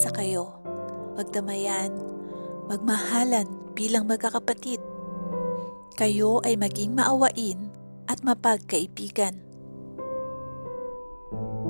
kayo, magdamayan, magmahalan bilang magkakapatid. Kayo ay maging maawain at mapagkaibigan.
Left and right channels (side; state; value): both; inverted; correlation -1.00